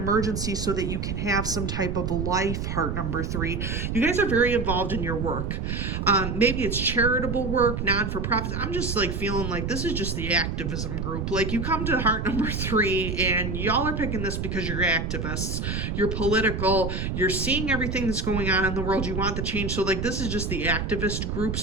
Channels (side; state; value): right; noise; rumble, 2 dB below the sound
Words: so that you can have some type of life, heart number 3. You guys are very involved in your work. Maybe it's charitable work, non-for-profit. I'm just like feeling like this is just the activism group. Like, you come to heart number 3 and y'all are picking this because you're activists, you're political, you're seeing everything that's going on in the world, you want the change. So like, this is just the activist group.